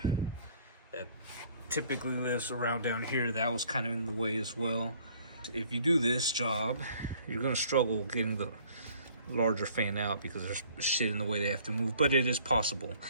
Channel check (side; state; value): both; inverted; correlation -0.57